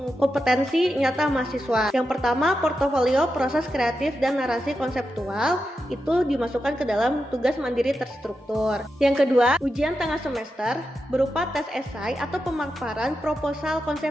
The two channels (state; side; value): normal; both; correlation 0.88